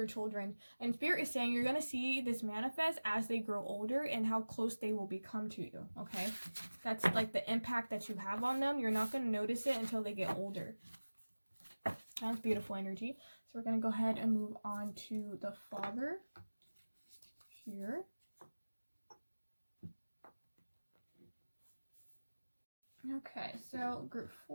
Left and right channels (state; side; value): inverted; both; correlation -1.00